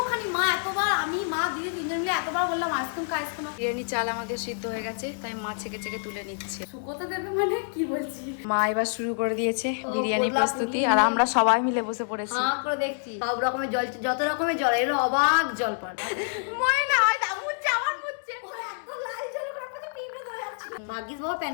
মা এতবার আমি মা দিদি তিনজন মিলে এতবার বললাম আইসক্রিম খা আইসক্রিম। বিরিয়ানি চাল আমাদের সিদ্ধ হয়ে গেছে, তাই মা ছেকে ছেকে তুলে নিচ্ছে। শুকোতে দেবে মানে কি বলছি, মা এবার শুরু করে দিয়েছে বিরিয়ানি প্রস্তুতি, আর আমরা সবাই মিলে বসে পড়েছি। করে দেখছি সব রকমের জল, যত রকমের জল, এগুলো অবাক জল পান। মনে না হয় মুচ্ছে আমার মুচ্ছে ভাগ্যিস বাবা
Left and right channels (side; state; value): right; silent; digital silence